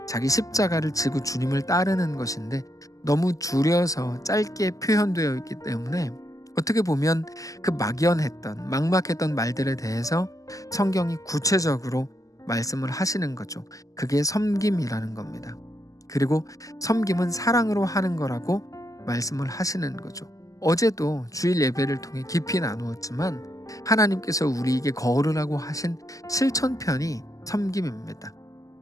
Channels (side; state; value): right; late; 0.17 ms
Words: 자기 십자가를 지고 주님을 따르는 것인데 너무 줄여서 짧게 표현되어 있기 때문에 어떻게 보면 그 막연했던 막막했던 말들에 대해서 성경이 구체적으로 말씀을 하시는 거죠. 그게 섬김이라는 겁니다. 그리고 섬김은 사랑으로 하는 거라고 말씀을 하시는 거죠. 어제도 주일 예배를 통해 깊이 나누었지만 하나님께서 우리에게 거르라고 하신 실천편이 섬김입니다.